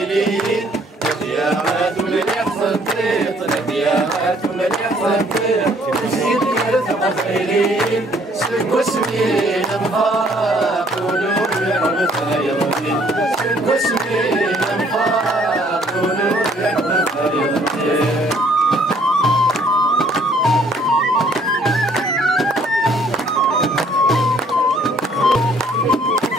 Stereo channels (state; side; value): normal; both; correlation 0.62